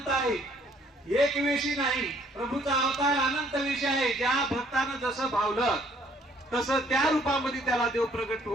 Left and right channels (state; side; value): normal; both; correlation 0.62